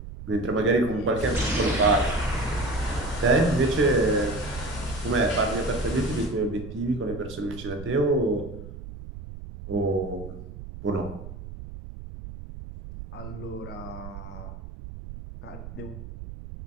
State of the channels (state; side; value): noise; right; rumble, 12 dB below the sound